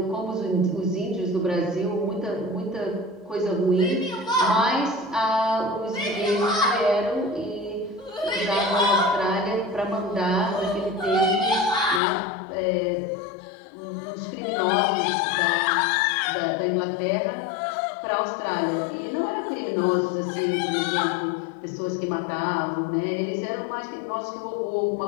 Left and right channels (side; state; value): right; drops out; at 12.0 s